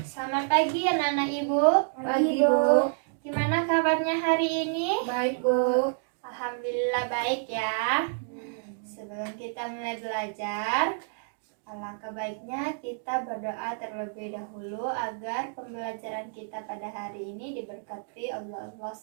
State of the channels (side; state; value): left; silent; digital silence